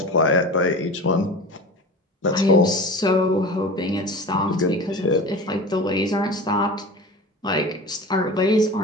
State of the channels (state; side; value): normal; both; correlation 0.34